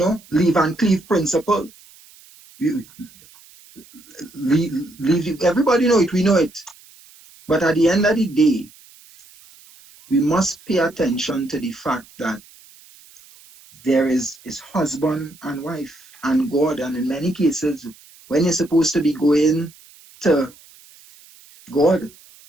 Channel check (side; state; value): right; noise; hiss, 25 dB below the sound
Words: leave and cleave principle. Everybody know it, we know it. But at the end of the day, we must pay attention to the fact that there is husband and wife and God. And in many cases, when you're supposed to be going to God,